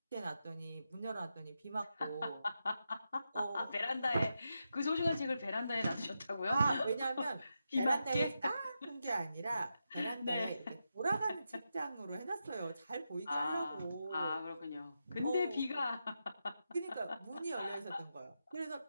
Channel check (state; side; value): inverted; both; correlation -0.87